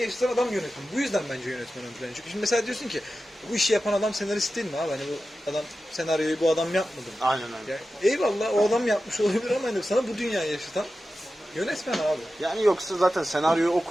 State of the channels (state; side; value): normal; both; correlation 0.93